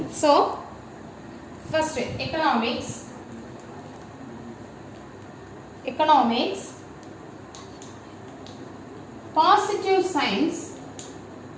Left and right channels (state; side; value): identical; both; correlation 1.00